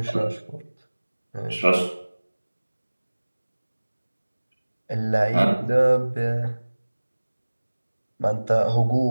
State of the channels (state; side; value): inverted; both; correlation -1.00